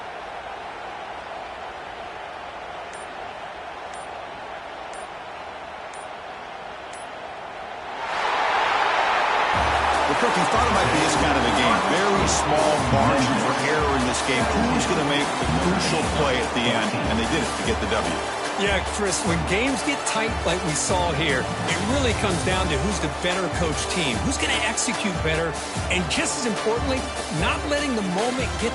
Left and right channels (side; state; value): both; identical; correlation 1.00